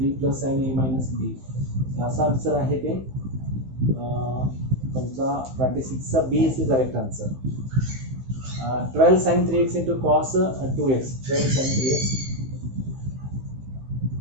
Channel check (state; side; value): late; left; 15 ms